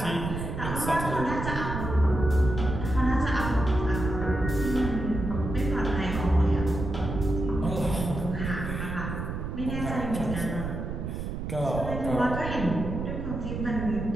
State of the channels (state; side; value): noise; right; rumble, 5 dB below the sound